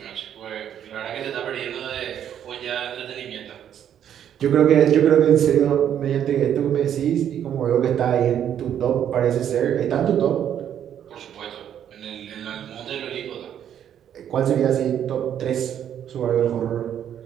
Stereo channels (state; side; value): quieter; left; 9.7 dB